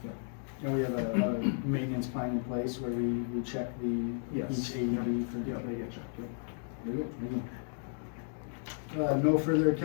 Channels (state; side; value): silent; right; 55 dB below the other